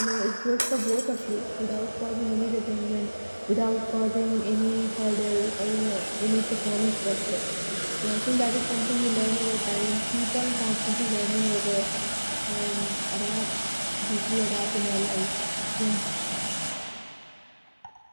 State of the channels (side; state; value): both; inverted; correlation -1.00